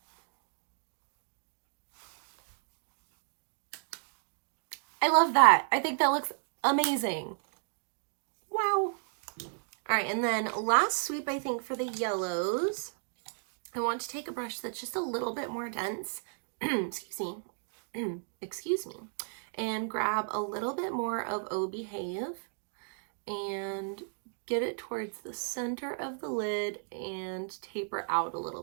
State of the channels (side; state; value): left; silent; digital silence